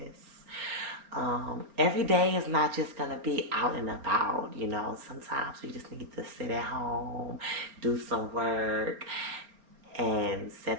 Every day is not just gonna be out and about, you know. Sometimes we just need to sit at home, do some work, and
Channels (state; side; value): late; left; 4.4 ms